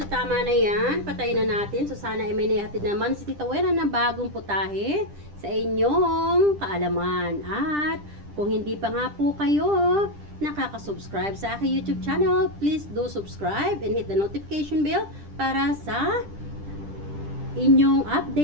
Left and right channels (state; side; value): late; left; 10 ms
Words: tama na yan. Patayin na natin. So sana ay may nahatid naman si Tita Wena na bagong putahe sa inyong kaalaman. At kung hindi pa nga po kayo nakaka-subscribe sa aking YouTube channel, please do subscribe and hit the notification bell para sa inyong